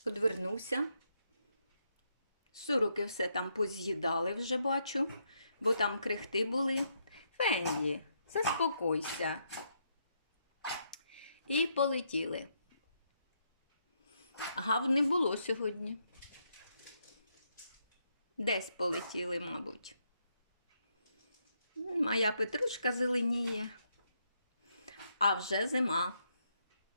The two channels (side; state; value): both; inverted; correlation -0.77